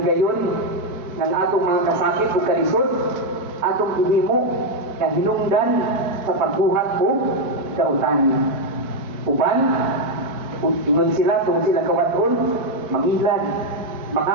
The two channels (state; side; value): late; left; 4.6 ms